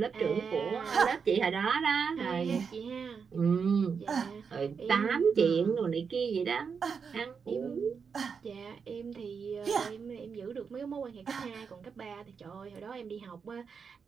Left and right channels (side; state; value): left; quieter; 6.0 dB